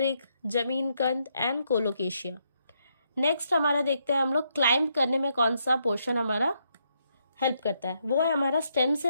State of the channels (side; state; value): both; inverted; correlation -0.77